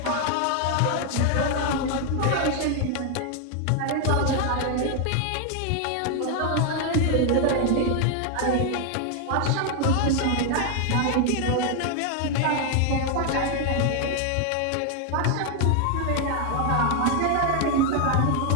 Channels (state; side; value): different; both; correlation 0.00